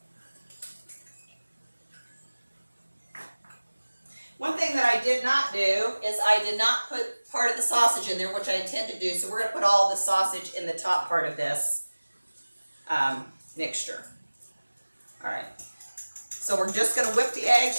One thing that I did not do is I did not put part of the sausage in there, which I intend to do. So we're going to put all the sausage in the top part of this mixture. All right. So we're just going to whip the eggs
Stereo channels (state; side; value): inverted; both; correlation -1.00